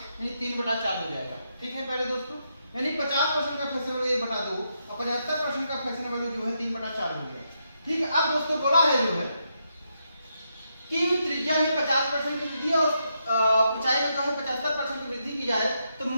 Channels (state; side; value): inverted; both; correlation -0.81